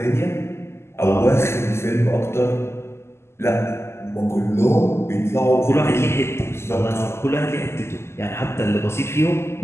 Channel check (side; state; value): right; late; 0.12 ms